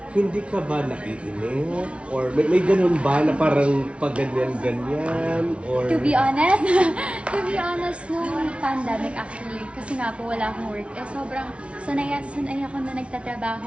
hindi ka ba naiinip? Or may ganun ba na parang pag ganyan-ganyan? Or... To be honest, nung pandemic actually, kasi nga po wala akong work, sobrang sanay ako na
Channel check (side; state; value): left; late; 0.061 ms